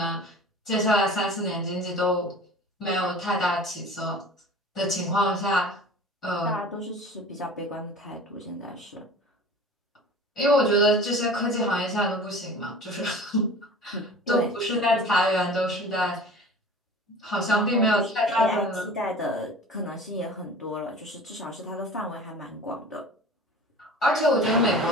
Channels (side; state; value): both; normal; correlation 0.41